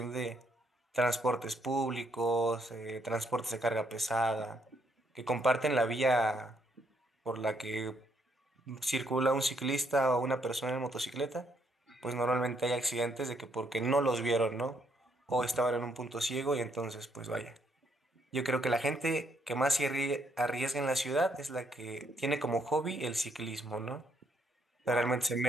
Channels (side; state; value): both; normal; correlation 0.72